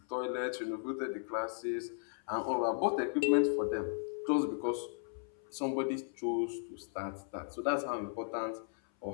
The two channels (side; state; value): right; silent; 54 dB below the other